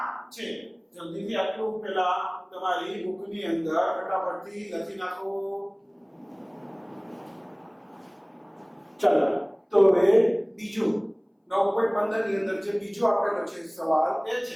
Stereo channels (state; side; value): identical; both; correlation 1.00